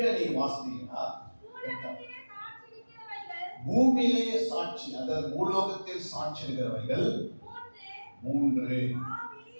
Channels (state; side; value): inverted; both; correlation -1.00